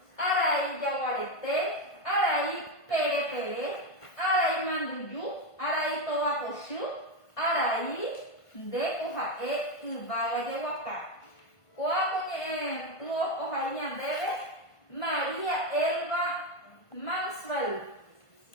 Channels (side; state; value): right; late; 1.5 ms